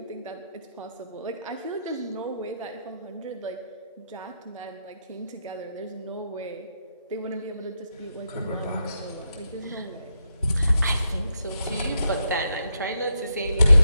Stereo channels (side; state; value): both; inverted; correlation -0.82